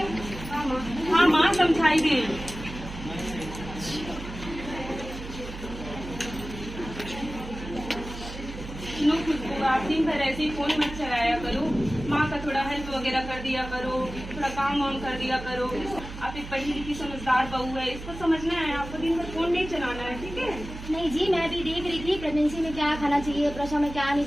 हाँ माँ समझाई दे। आप दिन भर ऐसे ही फोन मत चलाया करो, माँ का थोड़ा हेल्प वगैरह कर दिया करो, थोड़ा काम वाम कर दिया करो। आप एक पढ़ी लिखी समझदार बहू है, इसको समझना है, आपको दिन भर फोन नहीं चलाना है, ठीक है। नहीं जी, मैं भी देख रही थी प्रेगनेंसी में क्या खाना चाहिए, प्रसव में क्या नहीं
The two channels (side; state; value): right; noise; hum, 11 dB below the sound